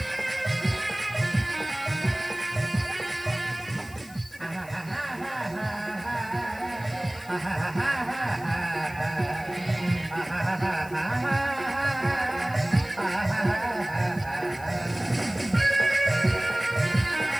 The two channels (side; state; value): left; noise; hiss, 21 dB below the sound